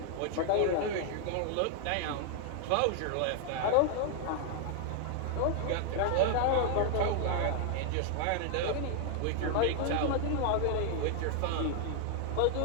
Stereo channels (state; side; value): different; both; correlation 0.00